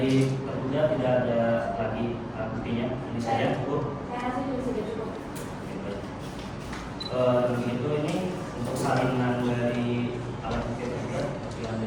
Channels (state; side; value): identical; both; correlation 1.00